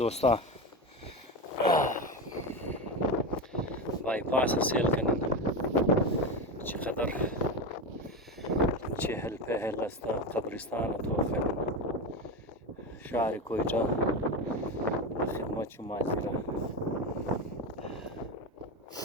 بایپاس سیل کنن چقدر چهل پهل است قبرستان توفن شهر کویتا خدمت شما حاضره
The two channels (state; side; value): normal; both; correlation 0.19